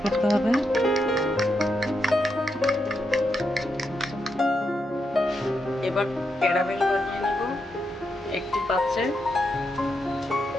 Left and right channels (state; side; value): normal; both; correlation 0.83